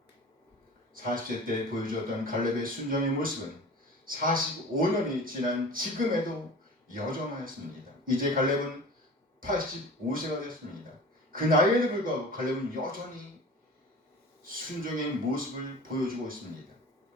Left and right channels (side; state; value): both; normal; correlation 0.39